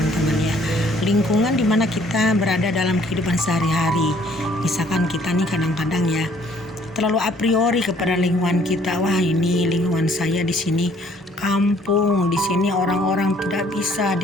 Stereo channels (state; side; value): normal; both; correlation 0.61